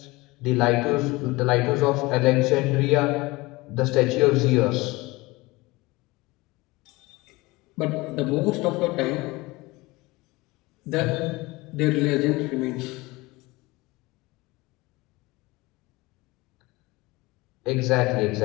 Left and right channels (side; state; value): right; quieter; 22.0 dB